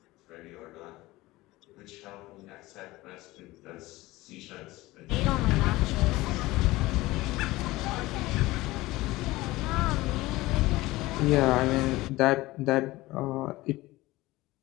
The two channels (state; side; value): quieter; right; 19.2 dB